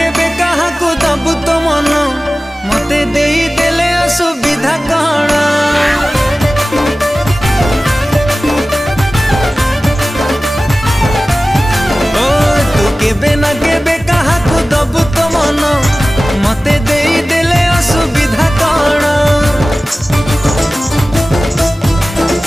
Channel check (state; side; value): normal; both; correlation 0.97